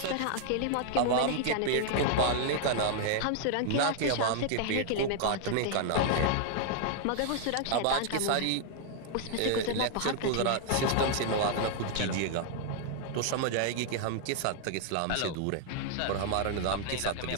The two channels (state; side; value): different; both; correlation 0.00